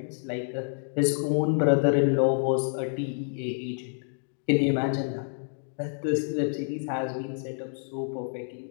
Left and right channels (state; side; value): silent; right; digital silence